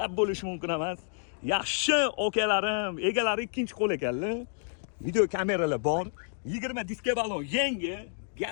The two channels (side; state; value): right; silent; digital silence